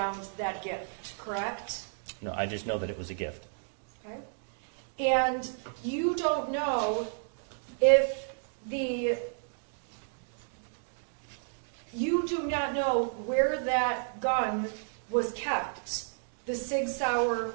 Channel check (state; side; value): silent; left; digital silence